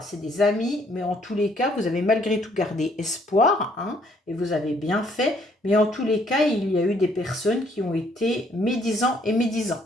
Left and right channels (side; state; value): both; normal; correlation 0.65